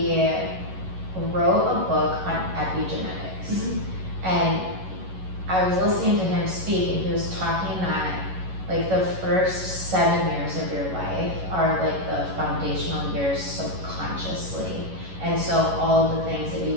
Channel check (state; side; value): late; left; 11 ms